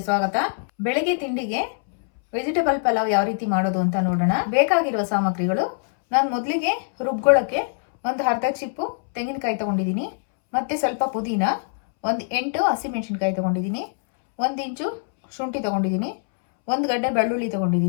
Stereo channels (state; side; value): silent; right; 63 dB below the other